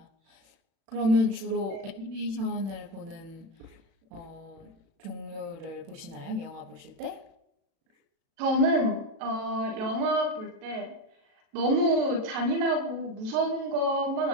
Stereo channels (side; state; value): left; late; 36 ms